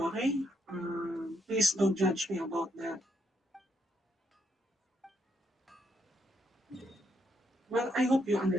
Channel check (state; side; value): normal; both; correlation 0.77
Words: okay? Please don't judge me about that. Well, I hope you